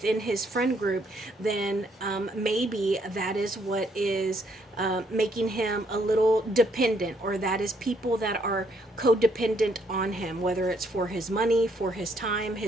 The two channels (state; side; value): normal; both; correlation 0.70